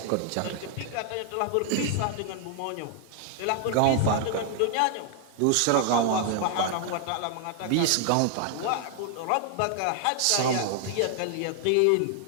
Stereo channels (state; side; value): different; both; correlation 0.00